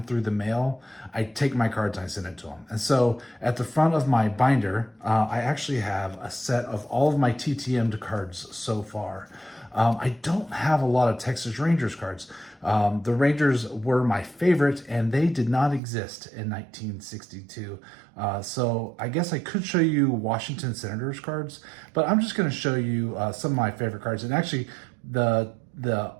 through the mail, I take my cards and I send it to them. And so at the front of my binder, I actually have a set of all of my TTM'd cards so far. I don't have a lot of Texas Rangers cards. The Rangers were my favorite, and they did not exist in 1962. So I guess I could show you Washington Senators cards, but I'm just going to show you some of my favorite cards. And actually, the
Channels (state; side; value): drops out; left; at 15.8 s